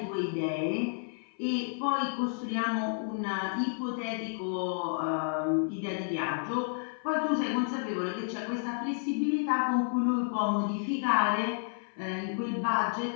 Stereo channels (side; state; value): right; silent; 57 dB below the other